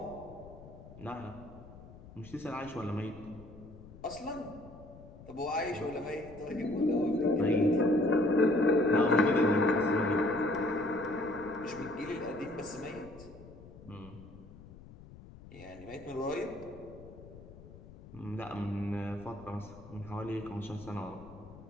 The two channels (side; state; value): left; noise; rumble, 18 dB below the sound